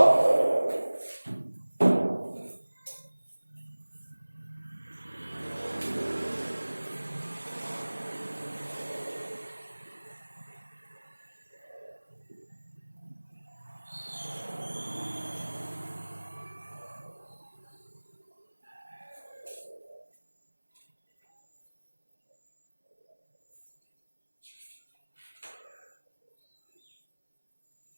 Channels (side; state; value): both; inverted; correlation -1.00